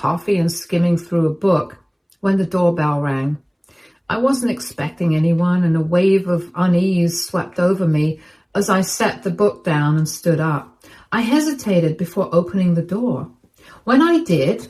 and skimming through a book when the doorbell rang. I wasn't expecting anyone, and a wave of unease swept over me as I set the book down and stood up. I hesitated before opening the door. When I did,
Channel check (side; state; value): both; identical; correlation 1.00